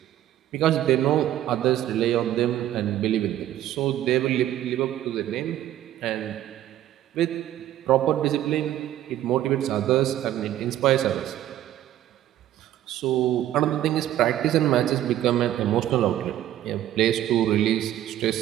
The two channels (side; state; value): left; quieter; 12.7 dB